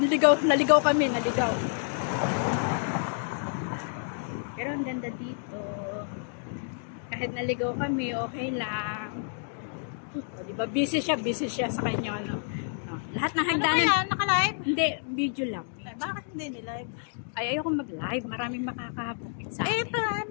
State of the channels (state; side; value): silent; right; digital silence